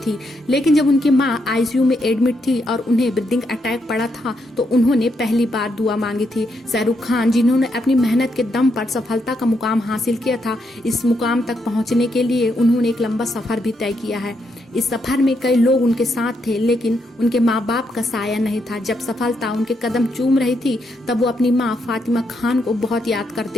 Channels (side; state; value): both; normal; correlation 0.79